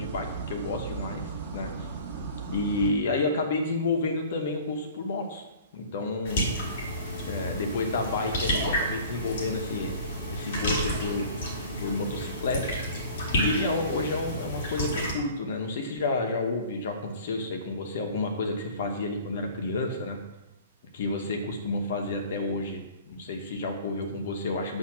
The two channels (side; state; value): both; inverted; correlation -0.46